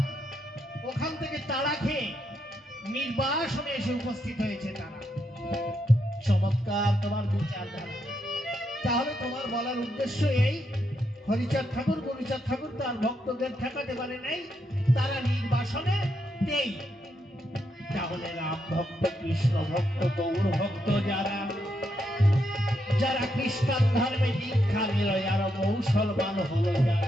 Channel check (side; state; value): both; normal; correlation 0.80